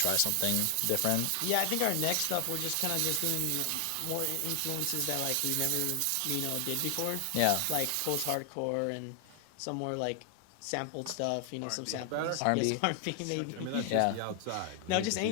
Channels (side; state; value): both; different; correlation 0.00